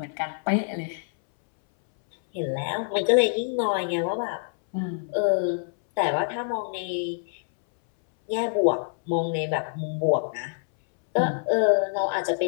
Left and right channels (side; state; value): right; silent; 61 dB below the other